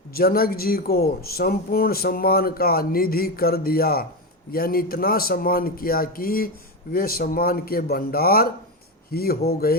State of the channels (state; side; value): normal; both; correlation 0.14